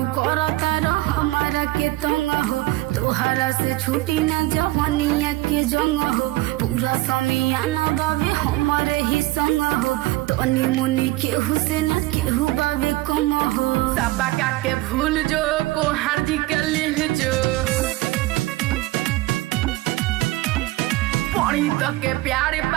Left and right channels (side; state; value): left; quieter; 18.8 dB